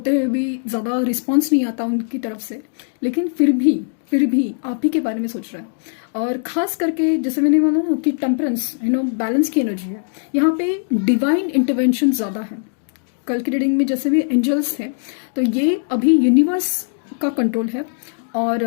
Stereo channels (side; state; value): right; silent; digital silence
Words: हुए भी ज़्यादा रिस्पांस नहीं आता उनकी तरफ से, लेकिन फिर भी आप ही के बारे में सोच रहा है। और खास करके जैसे मैंने बोला ना कि टेम्परेंस, बैलेंस की एनर्जी है, यहाँ पे डिवाइन इंटरवेंशन ज़्यादा है। कल की रीडिंग में जैसे भी एंजल्स थे, तो ये अभी यूनिवर्स का कंट्रोल है। और